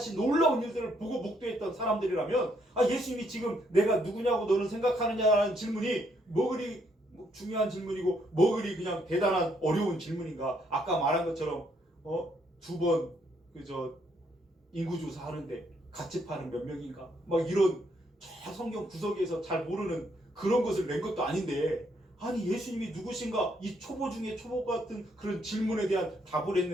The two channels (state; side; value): normal; both; correlation 0.72